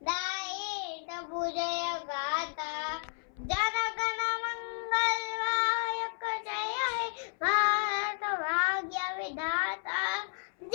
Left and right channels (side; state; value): right; silent; 56 dB below the other